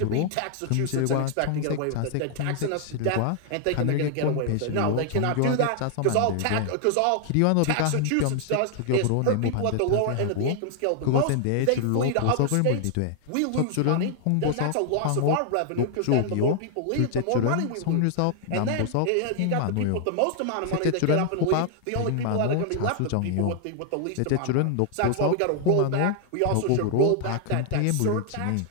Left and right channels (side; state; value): both; different; correlation 0.00